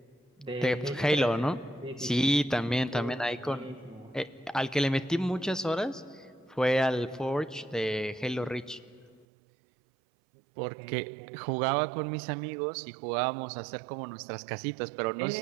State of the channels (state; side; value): drops out; left; at 9.2 s